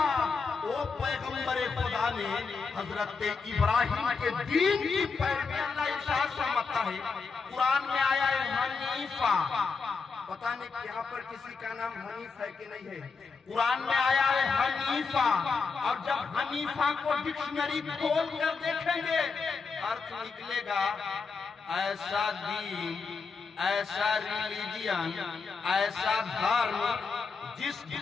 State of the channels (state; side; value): quieter; right; 4.9 dB